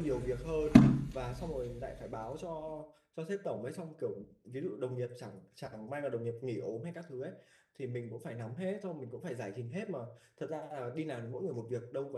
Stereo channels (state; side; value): identical; both; correlation 1.00